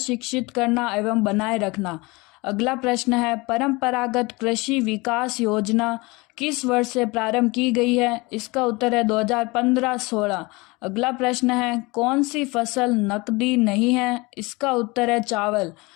करना एवं बनाए रखना। अगला प्रश्न है, परंपरागत कृषि विकास योजना किस वर्ष से प्रारंभ की गई है? इसका उत्तर है 2015-16। अगला प्रश्न है, कौन सी फसल नकदी नहीं है? इसका उत्तर है चावल।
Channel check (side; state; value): right; quieter; 24.5 dB